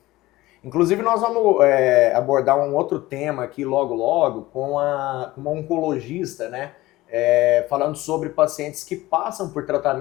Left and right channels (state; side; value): quieter; right; 18.0 dB